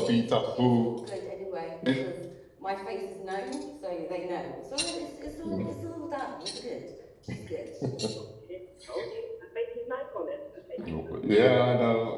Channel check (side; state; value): both; identical; correlation 1.00